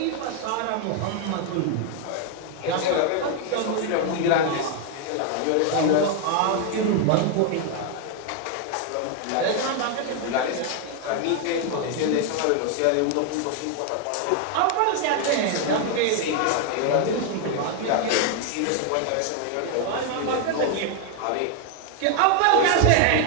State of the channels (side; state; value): both; different; correlation 0.00